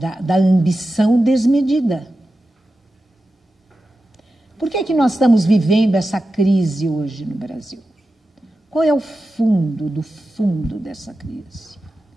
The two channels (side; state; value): both; normal; correlation 0.92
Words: ambição desmedida. Por que nós estamos vivendo essa crise hoje no Brasil? Qual é o fundo do fundo dessa crise?